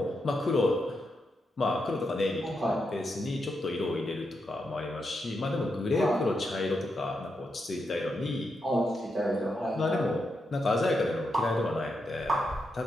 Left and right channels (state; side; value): normal; both; correlation 0.84